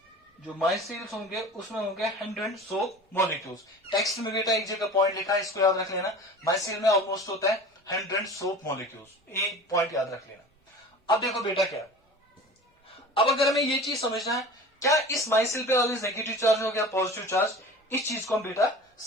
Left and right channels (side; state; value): both; normal; correlation 0.38